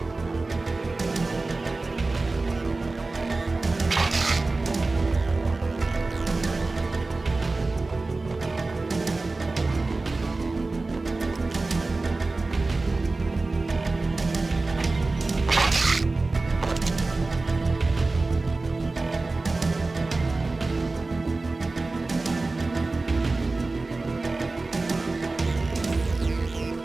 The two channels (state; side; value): quieter; left; 3.4 dB